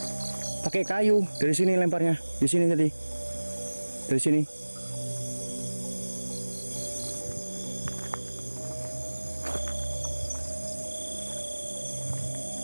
Pakai kayu. Dari sini lemparnya. Di sini tadi. Dari sini.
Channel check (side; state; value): both; inverted; correlation -1.00